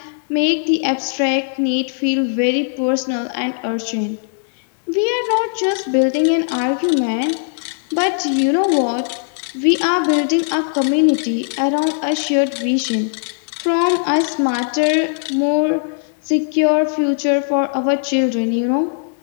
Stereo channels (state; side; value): silent; right; digital silence